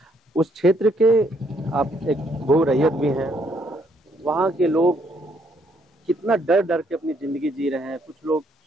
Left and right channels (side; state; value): both; normal; correlation 0.70